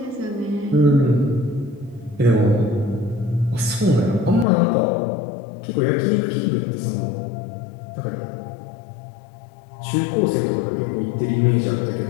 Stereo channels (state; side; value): drops out; right; at 4.5 s